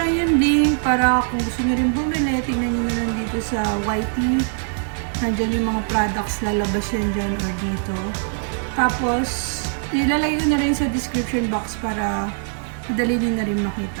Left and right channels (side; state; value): left; silent; 61 dB below the other